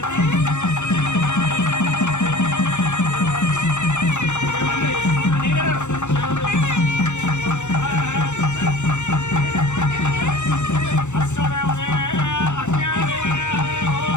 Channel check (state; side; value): late; right; 0.84 ms